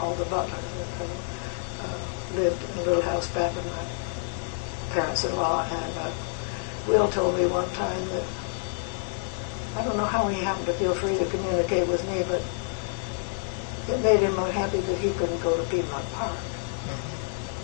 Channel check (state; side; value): silent; right; 59 dB below the other